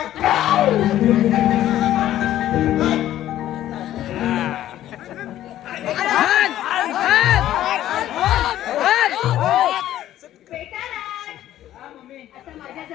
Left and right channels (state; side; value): quieter; right; 12.9 dB